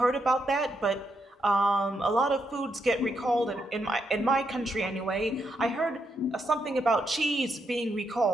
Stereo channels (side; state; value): both; normal; correlation 0.80